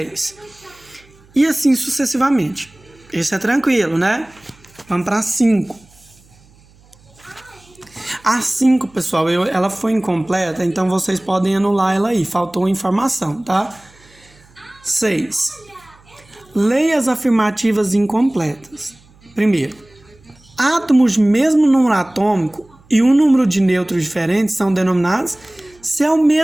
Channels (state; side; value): noise; right; hum, 29 dB below the sound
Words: E assim sucessivamente. Esse é tranquilo, né? Vamos para 5. A 5, pessoal, ela foi incompleta, então vocês podem anular ela aí. Faltou informação, tá? 6. Leia as afirmativas incompletas. Primeiro, átomos de mesmo número atômico e um número de nêutrons diferentes são denominados. Se é o